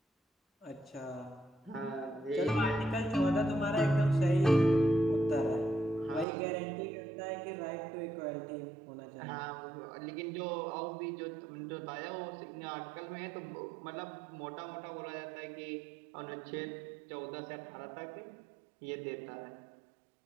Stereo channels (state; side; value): drops out; left; at 6.2 s